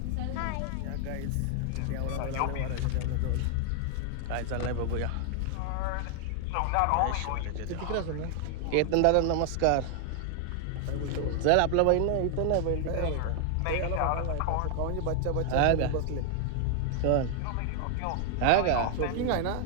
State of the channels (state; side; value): different; both; correlation 0.00